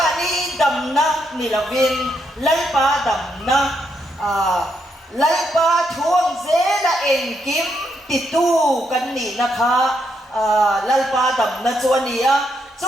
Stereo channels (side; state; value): both; normal; correlation 0.78